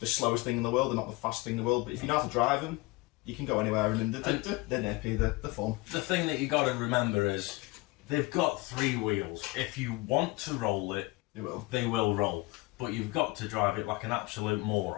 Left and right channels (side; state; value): right; quieter; 22.8 dB